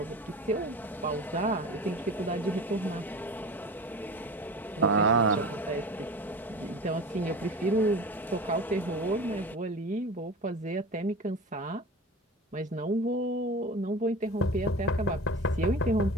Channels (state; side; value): normal; both; correlation 0.34